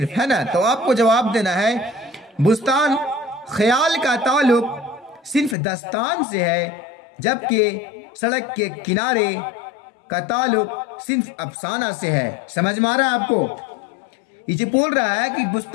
है ना। तो आपको जवाब देना है, बुस्तान ख्याल का ताल्लुक सिन्फ दस्तान से है, जबकि सड़क के किनारे का ताल्लुक सिन्फ अफसाना से है। समझ में आ रहा है आपको? ये बोल रहा है कि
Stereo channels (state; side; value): drops out; right; at 5.6 s